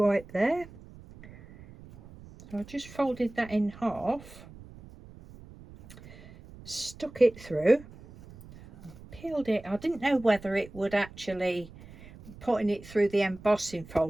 there. So I just folded that in half, stuck it through, peeled it. I didn't know whether it would actually, putting it through the embossing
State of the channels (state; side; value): noise; right; rumble, 19 dB below the sound